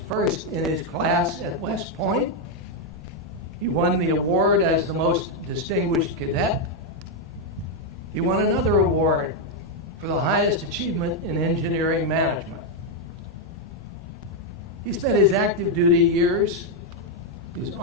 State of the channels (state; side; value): normal; both; correlation 0.01